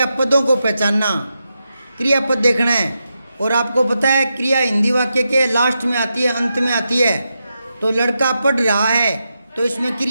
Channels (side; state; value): both; inverted; correlation -0.87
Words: को पहचानना, क्रियापद देखना है। और आपको पता है क्रिया हिंदी वाक्य के लास्ट में आती है, अंत में आती है। तो लड़का पढ़ रहा है, तो इसमें